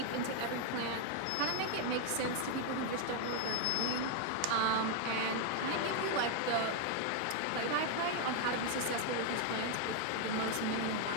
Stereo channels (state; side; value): different; both; correlation 0.01